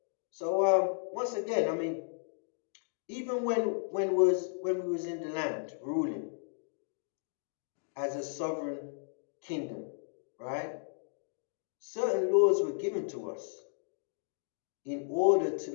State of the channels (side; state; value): right; silent; digital silence